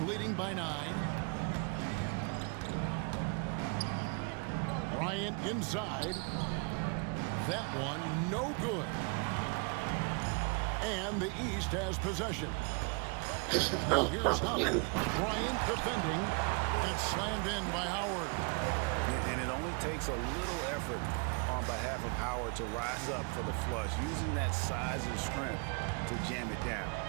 by 9. Bryant inside. That one no good. And the East has possession. Now here's Howard. Bryant defending. And it's slammed in by Howard. And it only takes a little effort on behalf of Howard to rise up for the flush, using that size and strength to jam it down.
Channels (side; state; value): left; quieter; 35.3 dB